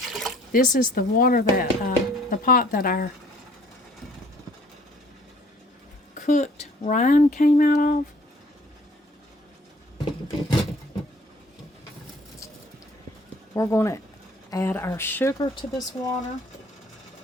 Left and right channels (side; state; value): both; normal; correlation 0.57